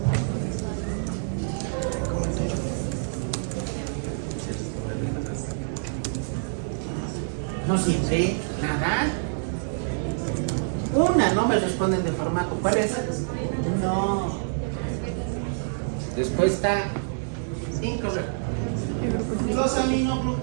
No sirve nada. Una, no me responden de formato. ¿Cuál es? No. Respuesta incorrecta. Los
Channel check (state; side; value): silent; left; digital silence